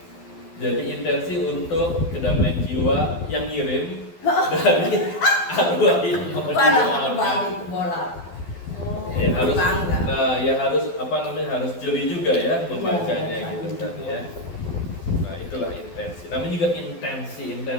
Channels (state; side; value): late; right; 12 ms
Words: Jadi intensi untuk kedamaian jiwa yang ngirim dari arwah ini mau didoakan. Ya harus, nah ya harus apa namanya, harus jeli juga ya membacanya gitu kan ya. Nah itulah intensi. Namanya juga intensi.